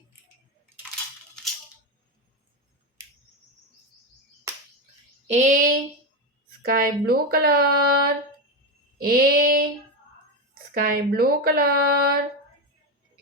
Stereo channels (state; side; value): normal; both; correlation 0.14